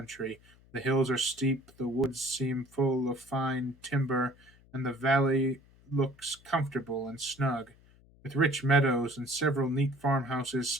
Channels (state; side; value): noise; left; hum, 27 dB below the sound